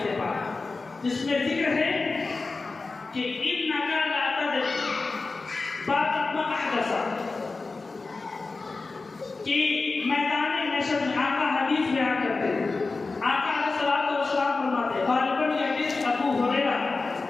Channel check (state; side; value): quieter; right; 3.8 dB